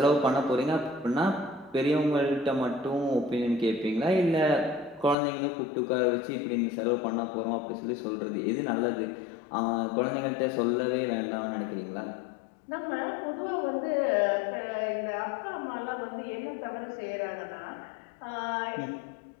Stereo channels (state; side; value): drops out; right; at 5.2 s